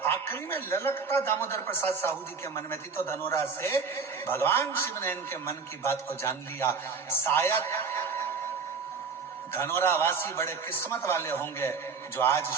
आखिरी में ललकता दामोदर प्रसाद साहू जी के मन में थी, तो धनोरा से भगवान शिव ने इनके मन की बात को जान लिया। शायद धनोरा वासी बड़े किस्मत वाले होंगे जो आज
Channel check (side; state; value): left; quieter; 5.2 dB